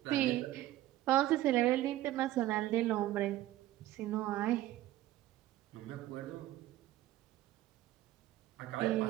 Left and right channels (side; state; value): left; quieter; 15.0 dB